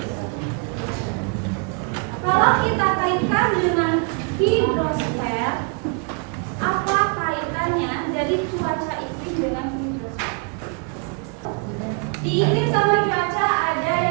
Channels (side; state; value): left; quieter; 36.0 dB